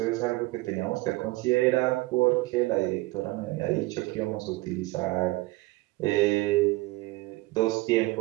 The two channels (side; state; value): left; quieter; 21.1 dB